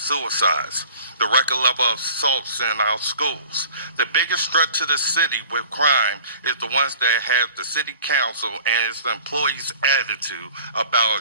the record level of assaults in our schools. The biggest threat to the city with crime is the ones that have the city council and its employees' attitude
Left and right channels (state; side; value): inverted; both; correlation -0.46